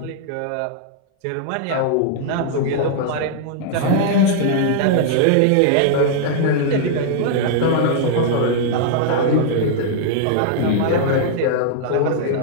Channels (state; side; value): different; both; correlation -0.01